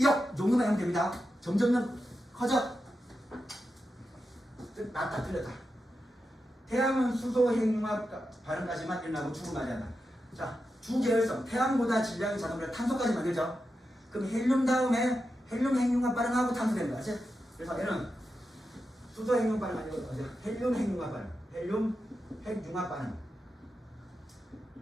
정도만 하면 됩니다. 점점 커져. 맞다, 틀렸다. 태양은 수소 핵융합 반응까지만 일어나고 죽을 맞이한다. 자, 주계열성, 태양보다 질량이 작으면 탄소까지 만들죠. 그럼 헬륨 다음에 헬륨 핵융합 반응하고 탄소 됩니다. 아시? 그래서 얘는 수소 핵융합 반응 아니고 헬륨 핵융합 반응, 헬륨 핵융합 반응,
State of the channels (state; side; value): normal; both; correlation 0.89